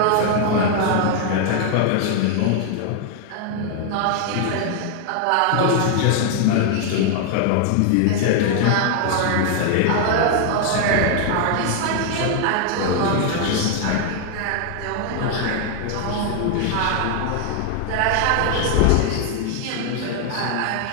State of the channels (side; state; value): both; different; correlation 0.00